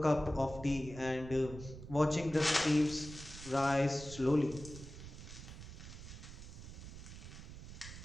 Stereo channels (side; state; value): right; noise; rumble, 12 dB below the sound